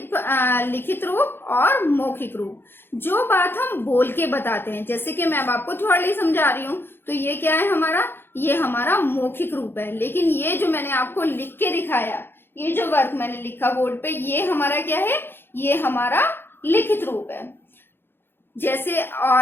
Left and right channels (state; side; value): late; right; 0.10 ms